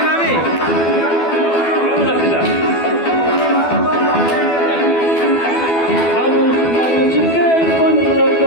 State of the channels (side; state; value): right; late; 12 ms